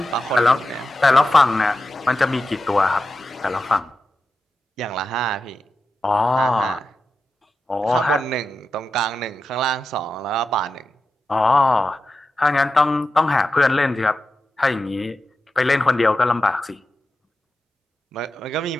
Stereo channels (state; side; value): normal; both; correlation 0.91